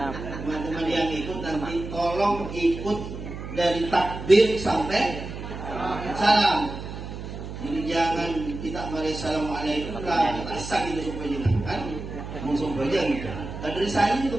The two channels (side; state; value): right; noise; hum, 9 dB below the sound